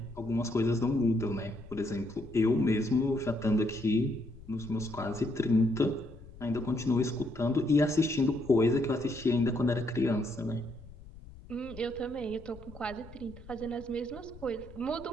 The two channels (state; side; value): noise; left; rumble, 18 dB below the sound